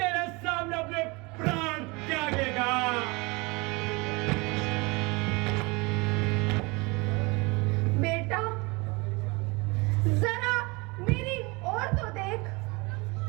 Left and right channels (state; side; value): quieter; left; 26.4 dB